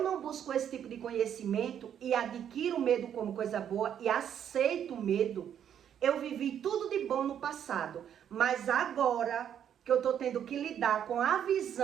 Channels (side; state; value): left; quieter; 9.3 dB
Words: não busco esse tipo de conhecimento e adquiro o medo como coisa boa e aceito o medo, eu vivi tudo de bom no passado, mas agora que eu estou tendo que lidar com a